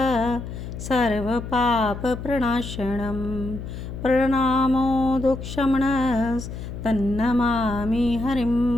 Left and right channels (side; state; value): left; noise; hum, 9 dB below the sound